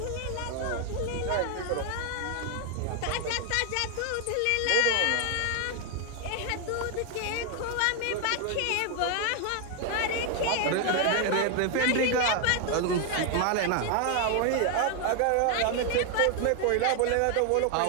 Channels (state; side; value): different; both; correlation 0.00